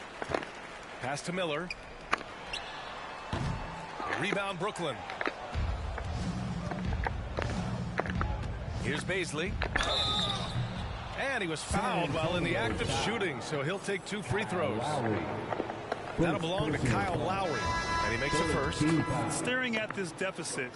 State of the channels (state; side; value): identical; both; correlation 1.00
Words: Pass to Miller. Rebound Brooklyn. Here's Baisley. And he was fouled while in the act of shooting, so he'll take 2 free throws. That'll belong to Kyle Lowry, and he makes the first. Staring at this deficit,